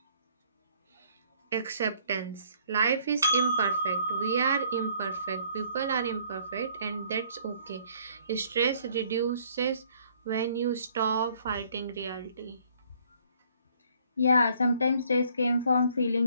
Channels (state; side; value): inverted; both; correlation -0.62